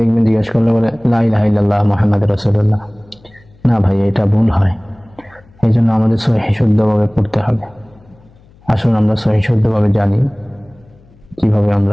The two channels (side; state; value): left; noise; hum, 28 dB below the sound